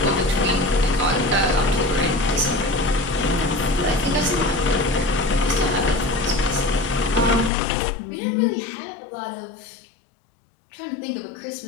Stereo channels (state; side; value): drops out; right; at 7.5 s